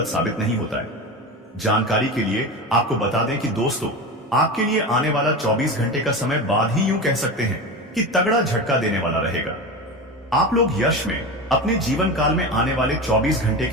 साबित नहीं होता है। जानकारी के लिए आपको बता दें कि दोस्तों, आपके लिए आने वाला 24 घंटे का समय बाद ही यूं कह सकते हैं कि तगड़ा झटका देने वाला रहेगा। आप लोग यश में अपने जीवन काल में आने वाले 24 घंटे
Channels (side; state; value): both; normal; correlation 0.25